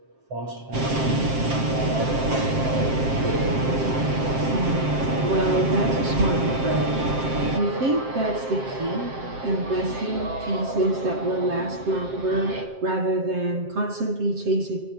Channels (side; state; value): left; late; 7.6 ms